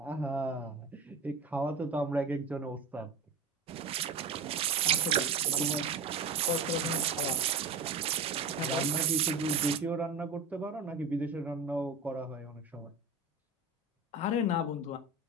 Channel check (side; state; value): left; quieter; 4.1 dB